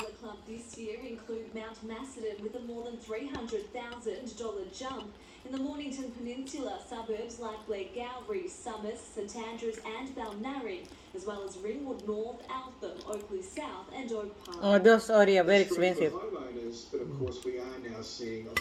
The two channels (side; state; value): both; identical; correlation 1.00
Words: Club this year include Mount Macedon with a more than $300,000 jump. In the Mornington Peninsula, suburbs like Blairgowrie, Summers, St Andrews and Balnarring, as well as Ringwood North, Altham, Oakley South and Oak Park. Oh, those areas are very Strength for expensive. homeowners, but of course we are now seeing